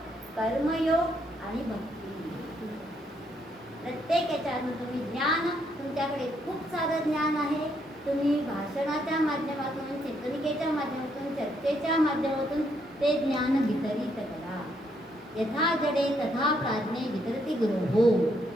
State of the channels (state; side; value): normal; both; correlation 0.74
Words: कर्मयोग आणि भक्ती. प्रत्येक याच्यातून तुम्ही ज्ञान, तुमच्याकडे खूप सारं ज्ञान आहे, तुम्ही भाषणाच्या माध्यमातून, चिंतनिकेच्या माध्यमातून, चर्चेच्या माध्यमातून ते ज्ञान वितरित करा. यथा जडे तथा प्राज्ञे वितरती गुरु हो.